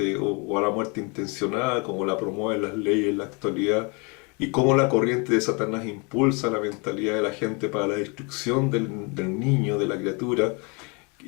o a la muerte intencional, como la promueven las leyes en la actualidad, y cómo la corriente de Satanás impulsa la mentalidad de la gente para la destrucción del niño, de la criatura,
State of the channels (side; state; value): right; quieter; 31.7 dB